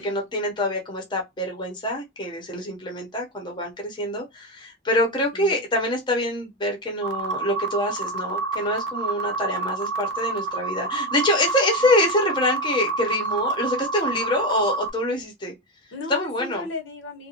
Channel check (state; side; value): normal; both; correlation 0.13